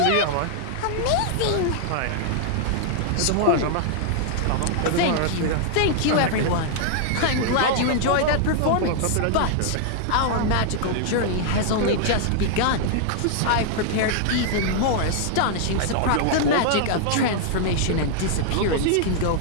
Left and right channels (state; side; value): different; both; correlation -0.01